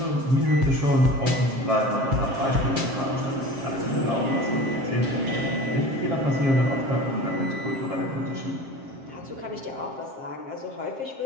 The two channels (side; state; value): left; late; 7.5 ms